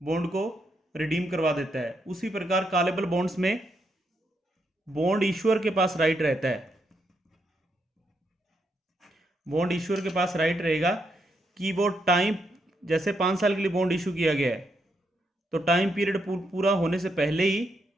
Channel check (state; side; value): normal; both; correlation 0.79